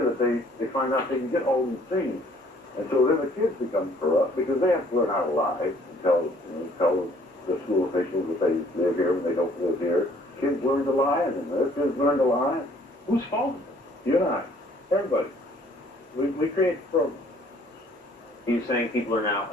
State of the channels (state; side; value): normal; both; correlation 0.59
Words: they find out they can get all these things. And so then the kids become corrupt because they have to learn how to lie and tell the school officials that they live here when they don't live here. Kids learn to lie, and then their kids learn to lie. Whose fault is it? You and I. Everybody. We create the program. Are you saying people are now